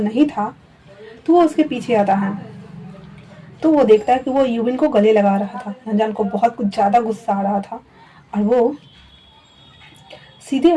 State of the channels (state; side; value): identical; both; correlation 1.00